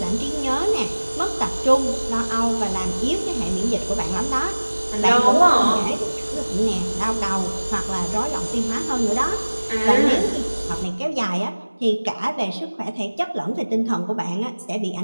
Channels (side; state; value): both; inverted; correlation -1.00